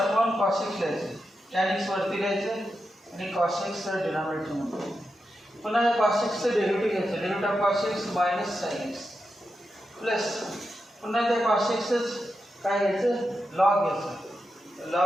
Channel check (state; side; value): normal; both; correlation 0.88